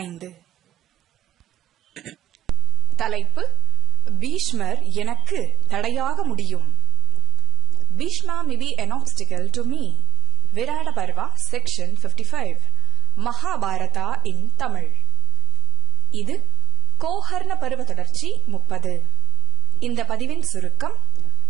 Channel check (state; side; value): quieter; left; 11.9 dB